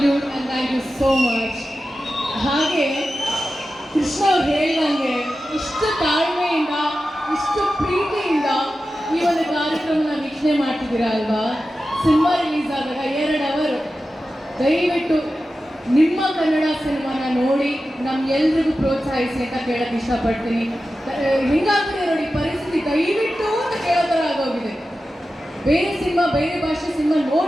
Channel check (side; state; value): both; normal; correlation 0.93